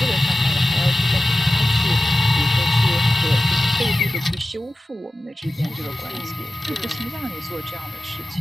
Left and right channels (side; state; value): both; normal; correlation 0.94